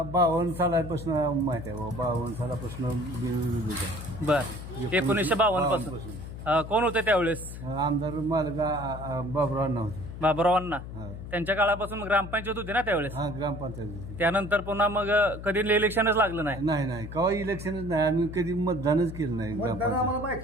52 सालापासून माहिती आहे. 52 सालापासून बिनविरोध आहे. बर, 1952 पासून कोण होते त्यावेळेस? आमदार मालका बाबुराव होते. बाबुरावांना हा. त्यांच्या काळापासून ग्रामपंचायत होती ना त्यावेळेस. हा, ग्रामपंचायत होती. त्यानंतर पुन्हा मग कधी इलेक्शनच लागलं नाही. नाही केव्हा इलेक्शनच नाही. आम्ही कधी मतदानच केलं नाही.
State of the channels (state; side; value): noise; left; hum, 10 dB below the sound